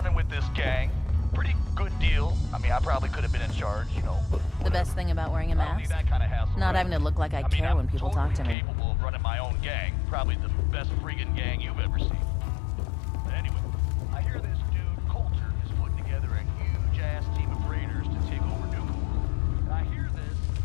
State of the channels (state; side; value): drops out; right; at 8.6 s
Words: with this gang. Pretty good deal. I mean, I probably could have been in charge, you know. The best thing about wearing a mask? That kind of hassle, Not right? having to look like I care when people talk to me. Capable of running my own gang. Probably the best friggin' gang you've ever seen. But anyway, I hear this dude, Coulter, is putting together a huge-ass team of raiders to take over Nuka World. And I hear this,